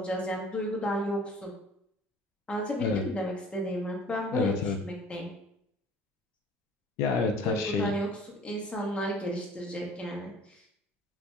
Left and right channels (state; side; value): normal; both; correlation 0.49